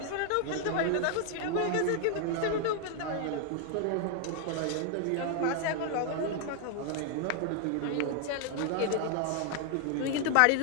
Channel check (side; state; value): both; different; correlation 0.00